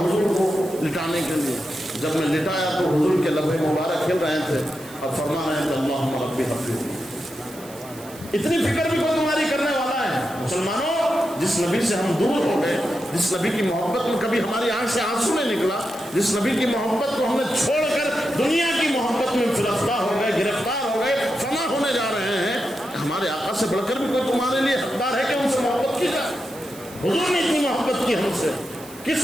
کو لٹانے کے لیے، جب میں لٹایا تو حضور کے لبے مبارک کھل رہے تھے اور فرما رہے ہیں کہ اللہم ربی حب لی امتی۔ اتنی فکر بھی کوئی تمہاری کرنے والا ہے؟ مسلمانوں، جس نبی سے ہم دور ہو گئے، جس نبی کی محبت میں کبھی ہماری آنکھ سے آنسو نہیں نکلا، جس نبی کی محبت کو ہم نے چھوڑ کر دنیا کی محبت میں فرفتہ ہو گئے، گرفتار ہو گئے، فنا ہونے جا رہے ہیں، ہمارے آقا سے بڑھ کر بھی کوئی تمہارے لیے حقدار ہے کہ ان سے محبت کی جائے؟ حضور نے اتنی محبت کی ہم سے،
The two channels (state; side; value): noise; right; hiss, 19 dB below the sound